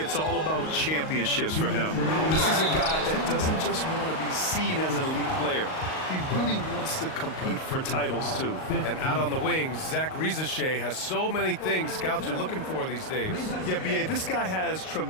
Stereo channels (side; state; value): right; late; 38 ms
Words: all about championships for him. This is a guy that doesn't just want to be seen as an elite player. He really wants to compete for titles, too. And out on the wings, Zach Reza Shea has so many things scouts are looking for these days. Yeah, B.A., this guy has